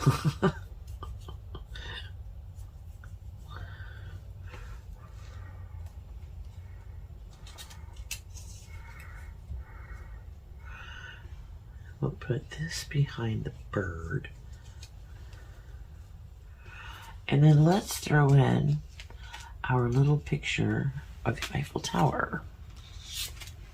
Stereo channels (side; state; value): both; identical; correlation 1.00